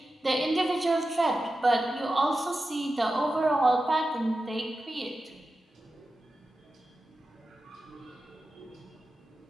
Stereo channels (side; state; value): both; normal; correlation 0.92